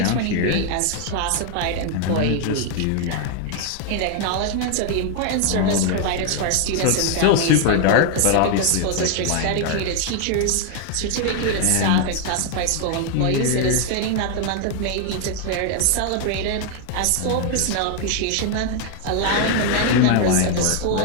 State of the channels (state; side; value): different; both; correlation 0.00